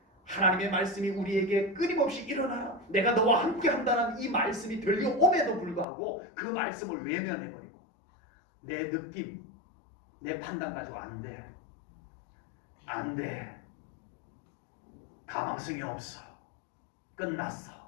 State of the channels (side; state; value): right; drops out; at 5.9 s